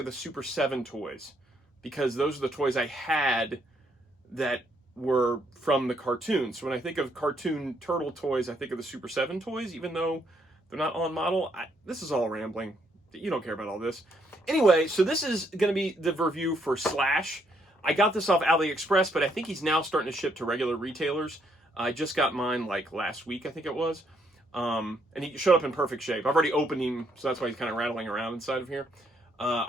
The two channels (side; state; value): both; normal; correlation 0.72